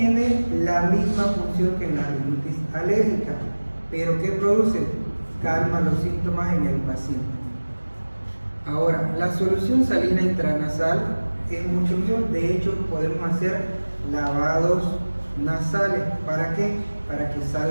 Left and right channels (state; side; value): inverted; both; correlation -1.00